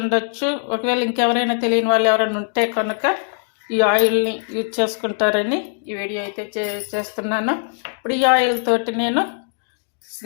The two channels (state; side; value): silent; right; digital silence